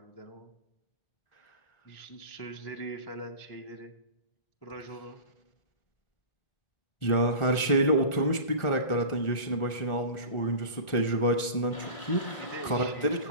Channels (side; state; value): right; late; 1.4 ms